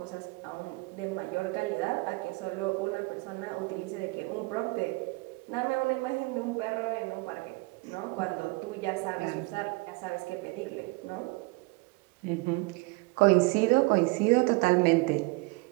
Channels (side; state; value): left; quieter; 26.0 dB